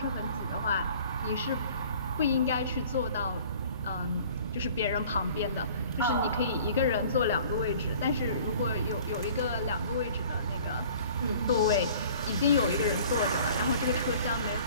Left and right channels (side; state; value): both; inverted; correlation -0.49